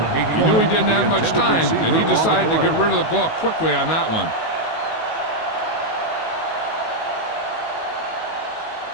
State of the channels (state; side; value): late; right; 19 ms